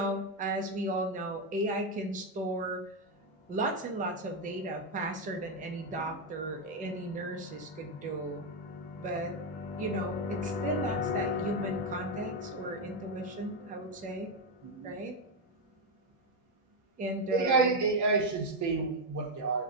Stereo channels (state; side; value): normal; both; correlation 0.05